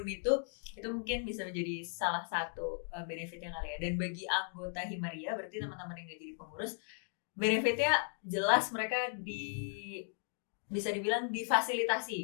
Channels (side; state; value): right; silent; 53 dB below the other